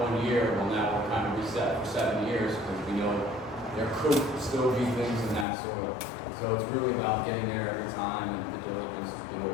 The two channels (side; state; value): right; drops out; at 5.5 s